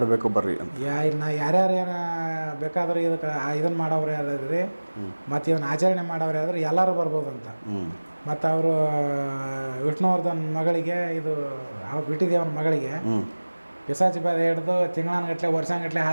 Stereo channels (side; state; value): both; inverted; correlation -1.00